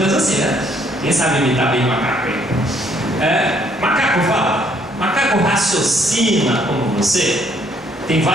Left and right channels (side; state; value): both; normal; correlation 0.66